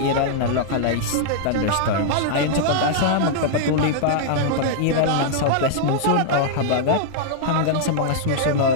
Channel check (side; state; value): both; different; correlation -0.01